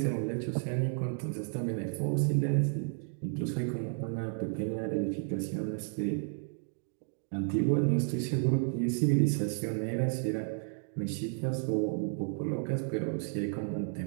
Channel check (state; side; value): silent; left; 56 dB below the other